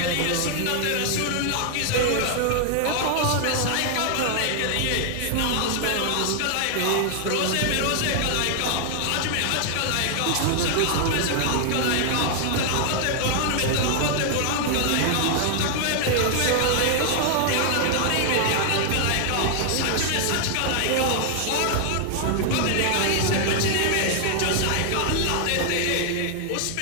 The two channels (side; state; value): both; different; correlation 0.00